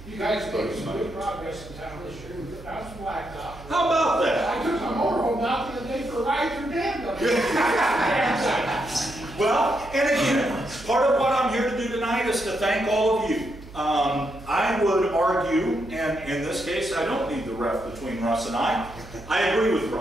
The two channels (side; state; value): right; noise; hum, 17 dB below the sound